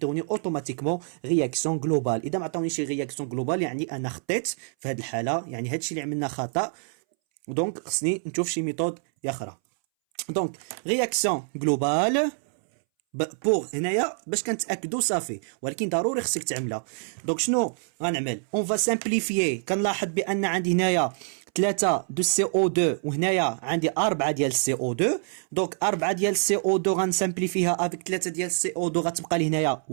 اوتوماتيكمون رياكسيون جلوبال. اذا ما عطاونيش رياكسيون جلوبال يعني انا خطيت في هاد الحاله، يعني هادشي اللي عملنا خطا. دونك خصني نشوف شي ميثود اخرى. دونك رياكسيون جلوبال بور هنايا باش كنتاكدوا صافي، ولكن ضروري خصك تعملها. دونك شنو غنعمل؟ اون فا سامبليفيي. كنلاحظ بان عندي هنايا 3 دو سي او 2 وهنايا عندي 4 ديال سي او 2. دونك 4 ديال سي او 2 غنسامبليفيها افيك 3 ديال سي او 2 غتبقى لي هنايا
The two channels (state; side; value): silent; left; 61 dB below the other